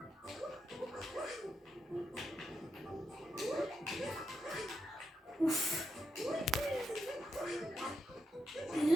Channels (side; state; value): both; normal; correlation 0.84